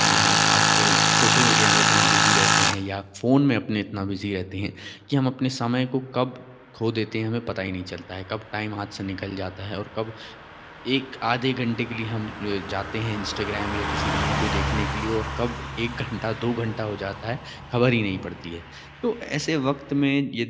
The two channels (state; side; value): identical; both; correlation 1.00